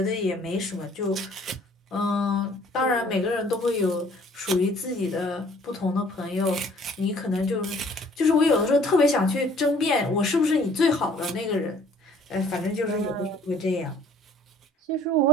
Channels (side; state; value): both; normal; correlation 0.56